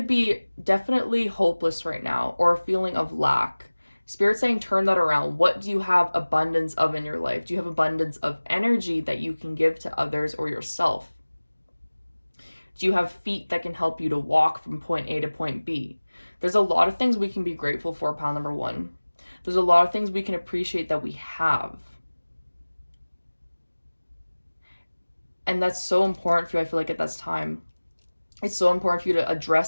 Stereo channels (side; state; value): both; inverted; correlation -1.00